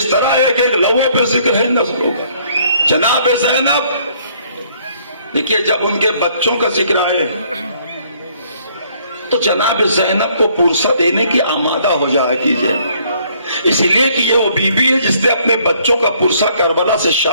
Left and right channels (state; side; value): inverted; both; correlation -0.64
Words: طرح ایک ایک لوہے پہ ذکر ہے نسلوں کا۔ جناب زینب، دیکھیے جب ان کے بچوں کا ذکر آئے تو جناب زینب کو پرسہ دینے کی آمادہ ہو جایا کیجئے، اس لیے کہ یہ وہ بی بی ہے جس نے اپنے بچوں کا پرسہ کربلا سے